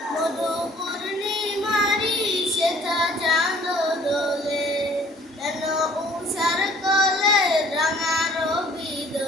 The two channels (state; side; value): normal; both; correlation 0.55